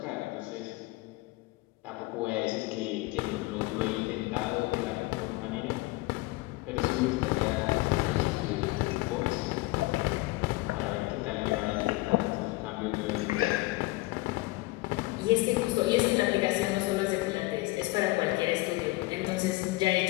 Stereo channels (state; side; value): quieter; right; 21.3 dB